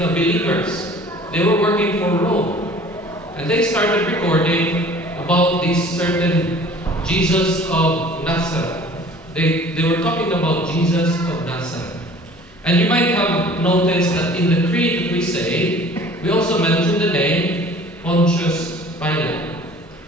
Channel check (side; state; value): both; normal; correlation 0.48